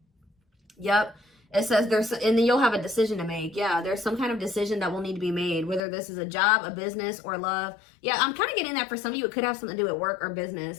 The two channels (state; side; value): drops out; right; at 5.8 s